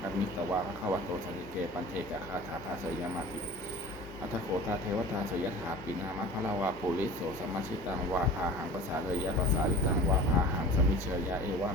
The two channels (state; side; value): normal; both; correlation 0.40